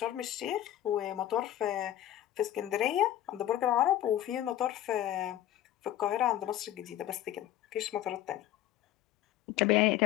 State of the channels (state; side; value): quieter; right; 12.6 dB